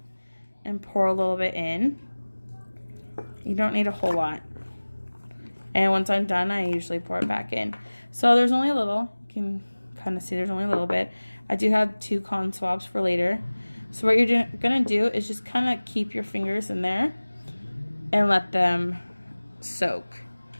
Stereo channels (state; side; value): inverted; both; correlation -1.00